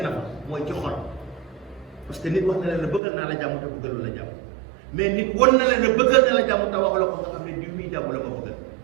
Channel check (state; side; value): drops out; left; at 3.0 s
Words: na fa mooy ci xol. parce que nit wax na leen ne bëggal naa la jàmm te bëggalu la jàmm, mais nit won na leen ne bëggal na la jàmm te waxu la ko nga xam ne diw muy jàmm la ma bëggal.